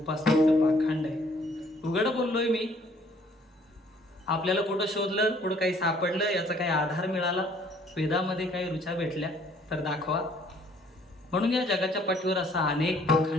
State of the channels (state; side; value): normal; both; correlation 0.60